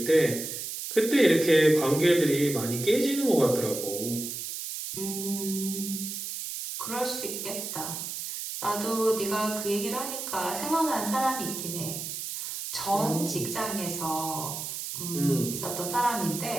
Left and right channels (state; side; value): noise; right; hiss, 6 dB below the sound